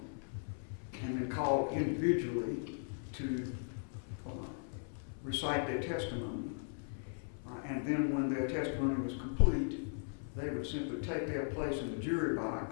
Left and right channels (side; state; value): right; silent; 53 dB below the other